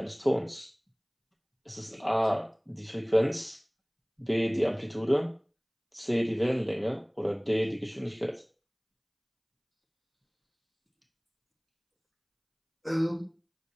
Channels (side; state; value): both; identical; correlation 1.00